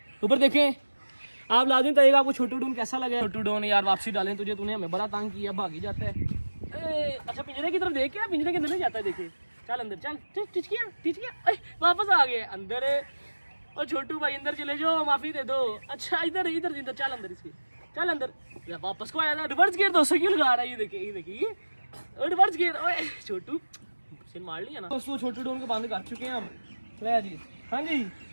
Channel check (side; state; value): both; inverted; correlation -1.00